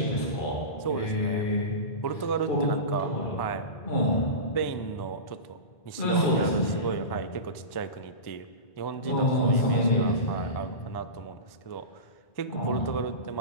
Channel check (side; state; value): right; late; 1.1 ms